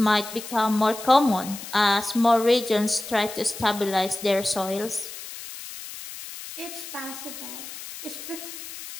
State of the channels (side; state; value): left; noise; hiss, 12 dB below the sound